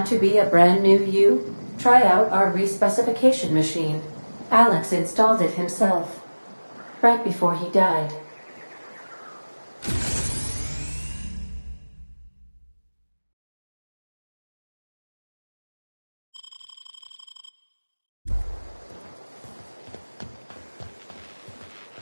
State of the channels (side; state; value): both; inverted; correlation -1.00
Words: to be a brand new you? Try out our respecification machine. Alex installed it himself, right before he died.